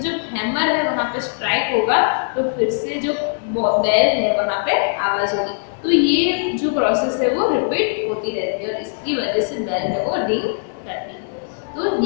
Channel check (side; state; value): right; silent; digital silence